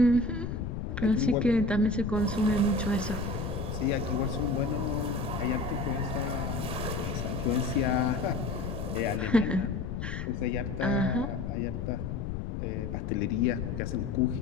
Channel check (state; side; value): noise; left; rumble, 4 dB below the sound